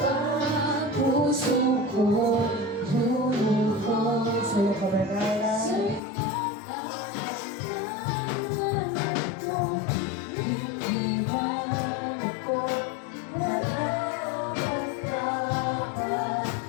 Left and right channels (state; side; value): drops out; right; at 6.0 s